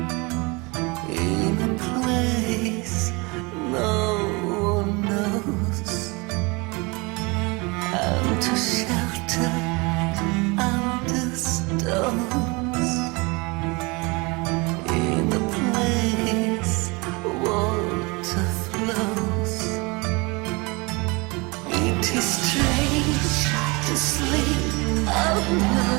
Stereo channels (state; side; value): quieter; left; 27.0 dB